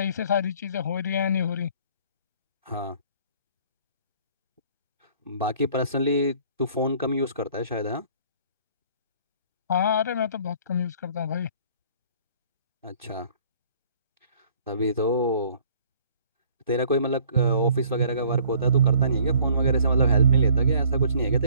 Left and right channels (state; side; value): inverted; both; correlation -0.56